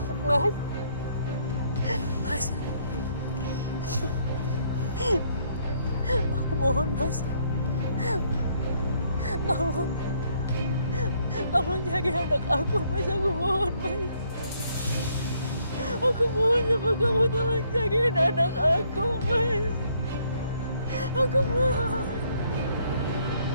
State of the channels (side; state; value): both; inverted; correlation -0.68